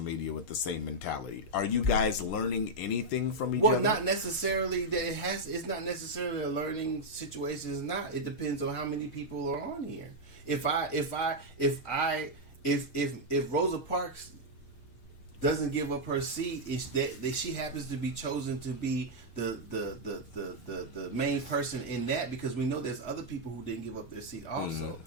with the same mentality. Are you guys learning anything from each other? Well, not necessarily that it's not necessarily a learning situation. It's not. It depends on how many people are on here. If Rosa Parks doesn't give up her seat, is that she happens to be chosen to be the main person in that, because we know there's other people who didn't give up their seat also.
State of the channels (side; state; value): right; late; 6.4 ms